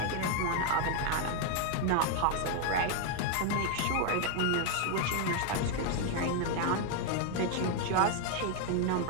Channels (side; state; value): both; different; correlation 0.01